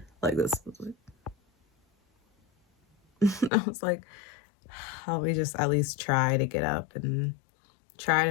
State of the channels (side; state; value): right; drops out; at 3.5 s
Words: like this. I was like, let me just at least try to get up and try